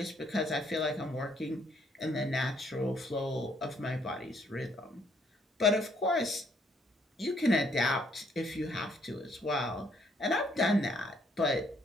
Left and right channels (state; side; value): normal; both; correlation 0.68